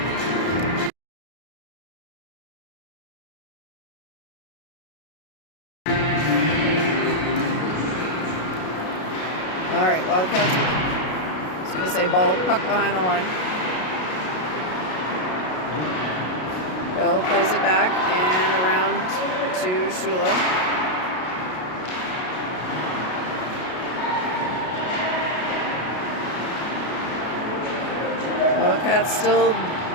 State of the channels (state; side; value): late; right; 33 ms